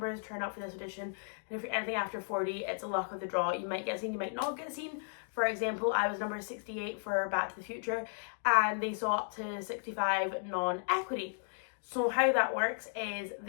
turn up for this audition. And if you're anything after 40, it's a luck of the draw. You might get seen, you might not get seen. For example, I was number 68 for Back to the Future, and they saw up to 65 non-equity. So how that works is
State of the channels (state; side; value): silent; right; digital silence